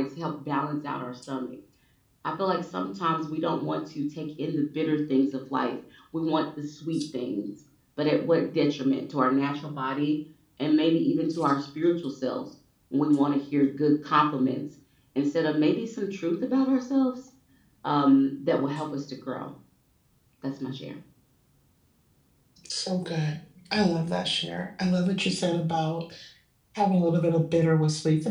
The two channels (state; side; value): identical; both; correlation 1.00